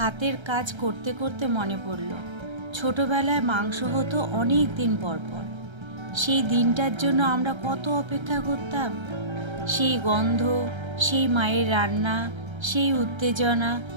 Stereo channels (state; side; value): late; left; 1.3 ms